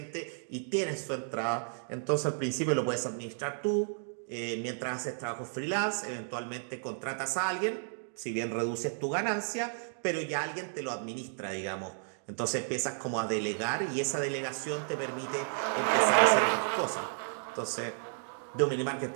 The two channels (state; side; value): silent; left; digital silence